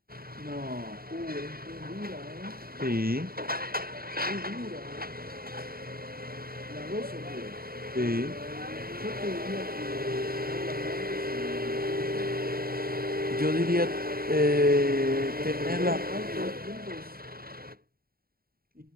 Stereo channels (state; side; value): late; left; 0.43 ms